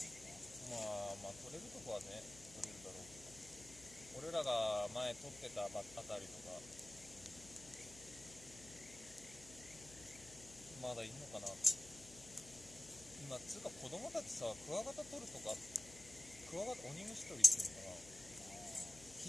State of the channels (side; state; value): left; noise; hum, 17 dB below the sound